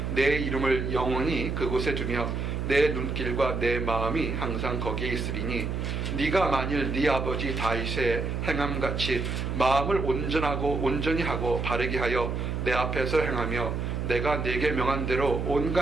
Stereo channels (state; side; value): noise; right; hum, 2 dB below the sound